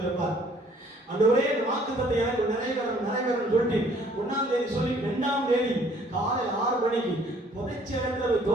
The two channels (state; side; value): normal; both; correlation 0.59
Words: ஆண்டவரே, இந்த வாக்குத்தத்தை எனக்கு நிறைவேறணும் சொல்லிட்டு 1ஆம் தேதி சொல்லி 2ஆம் தேதி காலை 6 மணிக்கு புதைச்ச இடத்துல